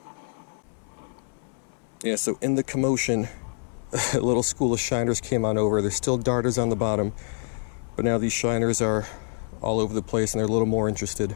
Yeah, so in the commotion, a little school of shiners came on over. There's still darters on the bottom, but now these shiners are all over the place and they're a little more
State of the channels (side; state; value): right; silent; 61 dB below the other